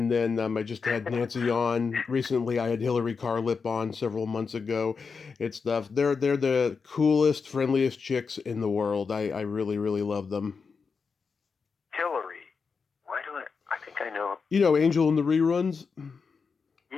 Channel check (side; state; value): right; quieter; 5.3 dB